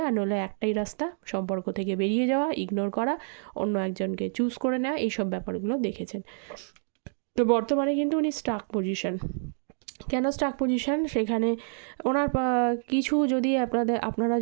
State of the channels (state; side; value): silent; left; 59 dB below the other